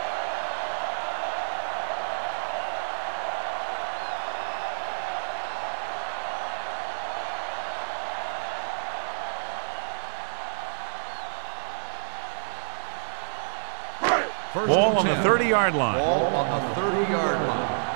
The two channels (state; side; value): silent; left; digital silence